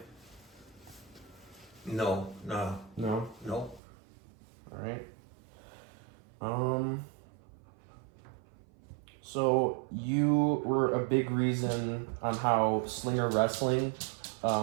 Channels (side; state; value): left; drops out; at 3.8 s